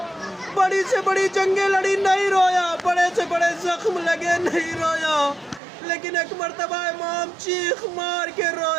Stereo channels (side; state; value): left; drops out; at 5.6 s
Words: بڑی سے بڑی جنگیں لڑی نہیں رویا، بڑے سے بڑے زخم لگے نہیں رویا، لیکن ایک مرتبہ امام چیخ مار کے